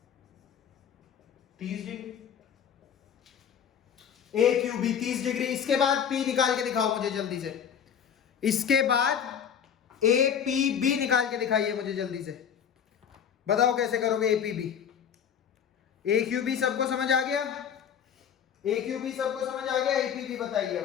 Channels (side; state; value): right; quieter; 8.2 dB